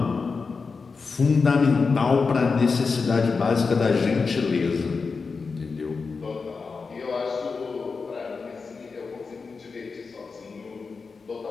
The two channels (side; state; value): right; quieter; 4.7 dB